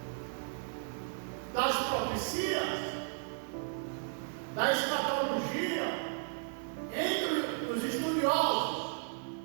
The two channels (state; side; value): silent; left; digital silence